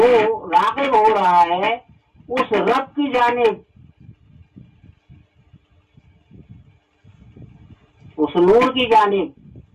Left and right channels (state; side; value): identical; both; correlation 1.00